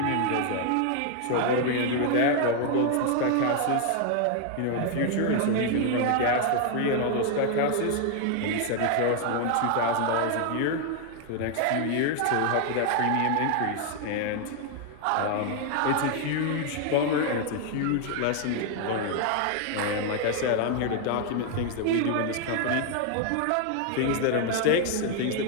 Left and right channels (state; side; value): different; both; correlation 0.00